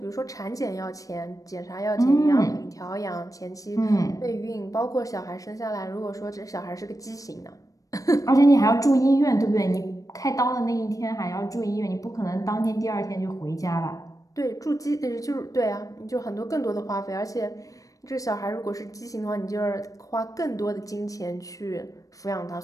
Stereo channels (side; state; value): right; late; 0.16 ms